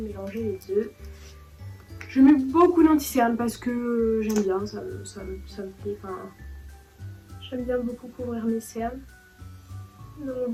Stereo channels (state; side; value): identical; both; correlation 1.00